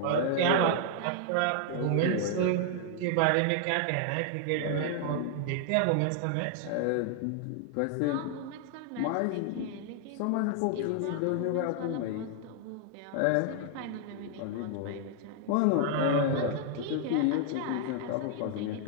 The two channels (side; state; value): both; different; correlation 0.00